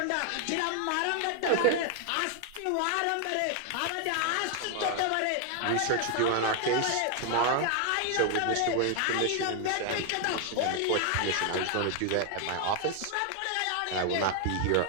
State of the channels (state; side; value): different; both; correlation 0.00